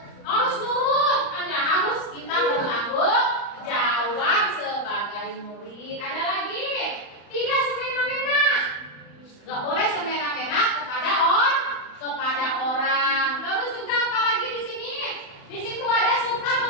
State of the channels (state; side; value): late; right; 35 ms